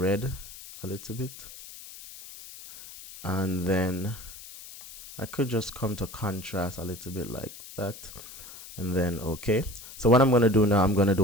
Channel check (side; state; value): left; noise; hiss, 15 dB below the sound